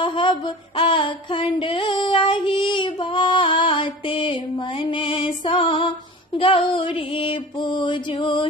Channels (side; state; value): both; normal; correlation 0.38